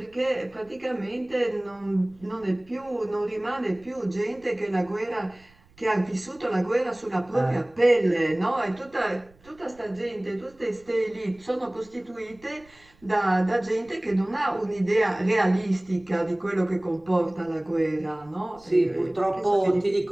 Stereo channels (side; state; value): right; noise; rumble, 28 dB below the sound